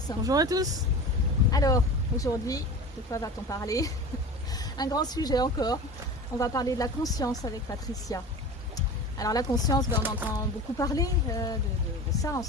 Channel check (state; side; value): normal; both; correlation 0.34